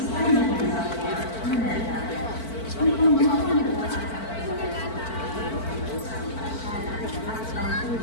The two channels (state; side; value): late; right; 4.5 ms